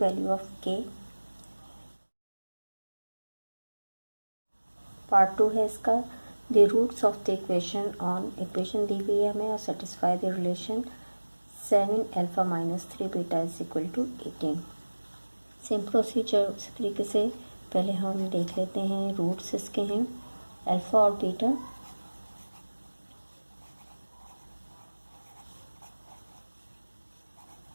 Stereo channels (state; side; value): inverted; both; correlation -1.00